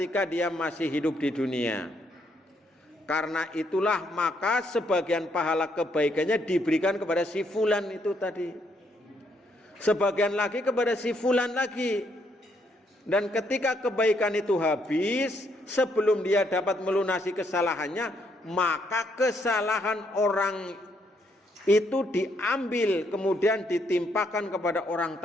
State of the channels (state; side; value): normal; both; correlation 0.73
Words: dia masih hidup di dunia. Karena itulah maka sebagian pahala kebaikannya diberikan kepada si fulan itu tadi, sebagian lagi kepada si fulan lagi. Dan ketika kebaikan itu habis, sebelum dia dapat melunasi kesalahannya, maka kesalahan orang itu diambil kemudian ditimpakan kepada orang